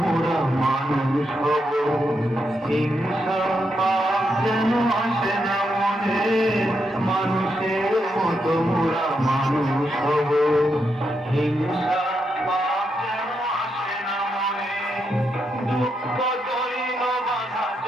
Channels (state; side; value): normal; both; correlation 0.82